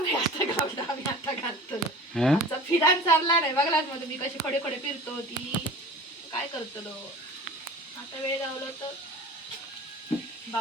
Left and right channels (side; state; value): both; normal; correlation 0.39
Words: आता घालतो, आम्ही आता घालतो. हं? आमचा फिरान चालला नाही बघलाच मग तुम्ही कशी खडे खडे फिरतो ती काय करतलो. आता वेळ गावलो तर